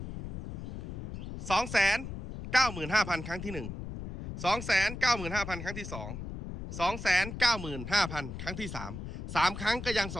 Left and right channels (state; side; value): noise; left; rumble, 8 dB below the sound